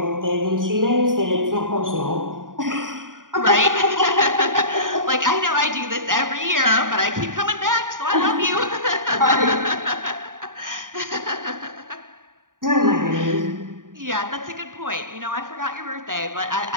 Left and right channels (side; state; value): left; late; 0.89 ms